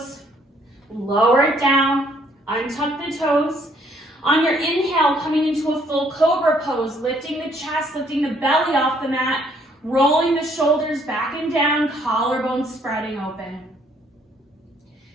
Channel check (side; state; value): both; normal; correlation 0.65